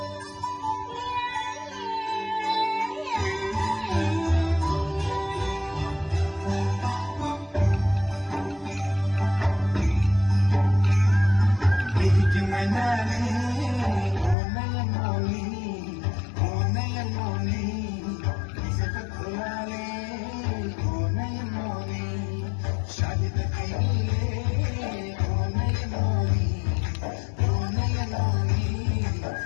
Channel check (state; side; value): drops out; right; at 14.4 s